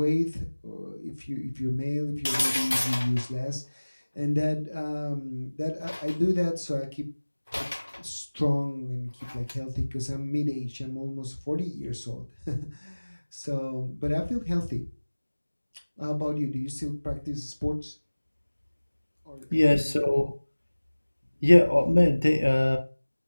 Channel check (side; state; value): both; inverted; correlation -1.00